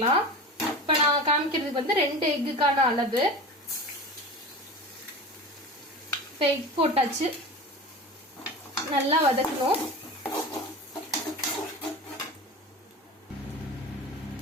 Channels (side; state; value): both; normal; correlation 0.31